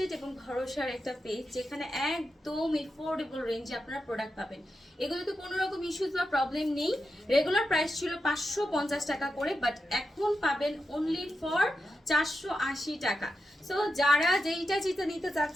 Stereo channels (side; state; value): both; normal; correlation 0.88